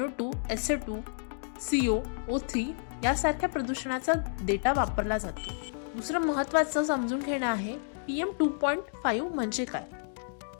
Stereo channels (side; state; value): right; silent; digital silence